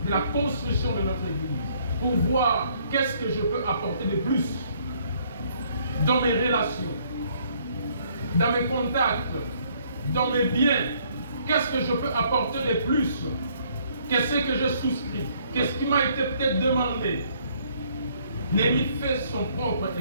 de la construction de notre église, pour voir qu'est-ce que je peux apporter de plus dans mes relations, dans mes contacts, dans mes biens. Qu'est-ce que je peux apporter de plus? Qu'est-ce que je souscris? Qu'est-ce qui m'a été peut-être demandé? Néhémie fait son propre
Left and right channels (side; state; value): both; inverted; correlation -0.65